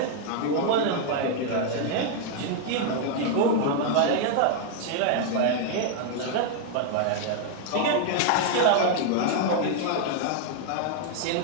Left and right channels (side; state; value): both; different; correlation 0.00